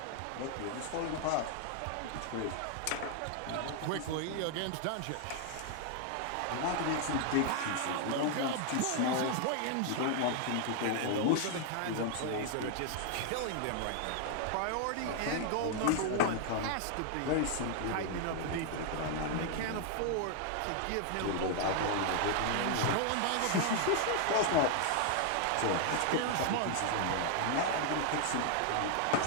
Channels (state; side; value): different; both; correlation 0.00